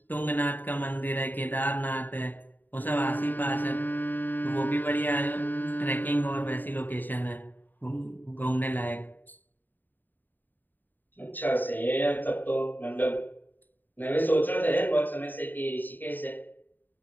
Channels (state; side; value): late; right; 0.089 ms